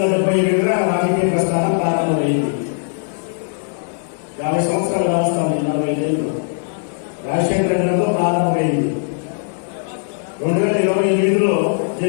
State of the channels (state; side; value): silent; right; digital silence